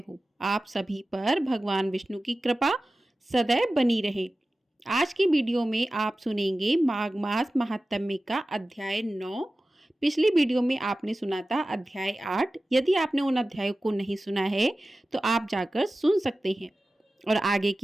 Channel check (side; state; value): both; normal; correlation 0.95